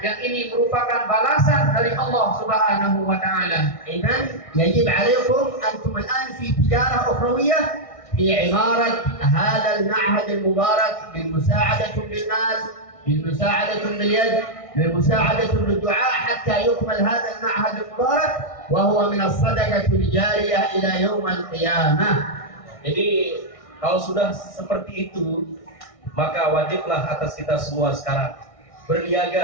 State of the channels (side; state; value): right; late; 1.6 ms